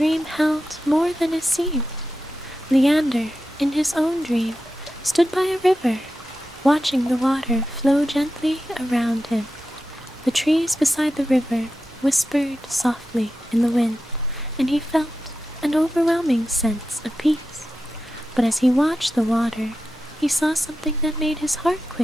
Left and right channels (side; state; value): both; normal; correlation 0.91